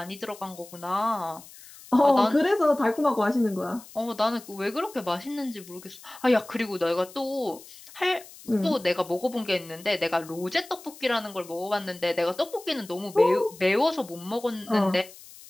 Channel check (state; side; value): noise; left; hiss, 19 dB below the sound